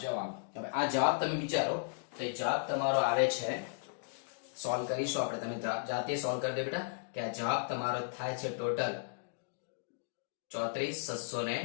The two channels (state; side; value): silent; right; digital silence